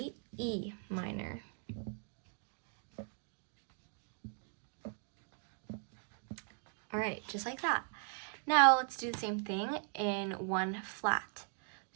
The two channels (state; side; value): silent; left; 52 dB below the other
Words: E minor. All right, just like that. Now let's do the same thing in 1 flat.